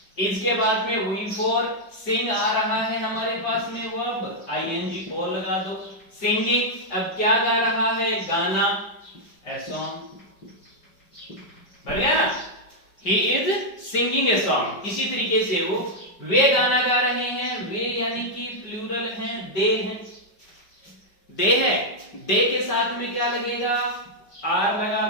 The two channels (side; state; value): right; late; 5.1 ms